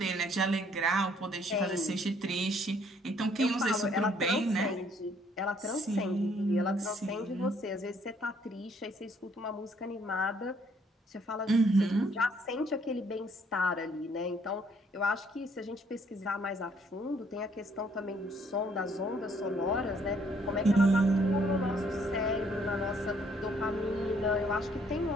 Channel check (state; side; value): normal; both; correlation 0.65